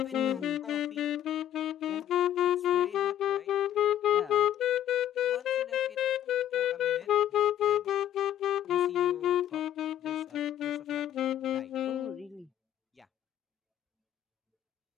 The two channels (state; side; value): quieter; right; 11.5 dB